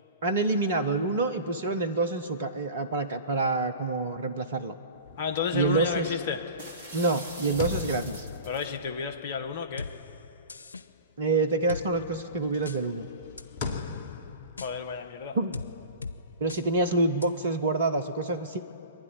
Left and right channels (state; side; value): inverted; both; correlation -0.35